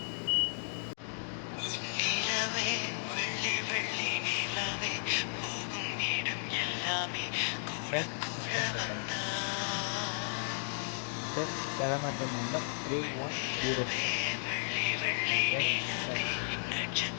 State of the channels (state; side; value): silent; right; digital silence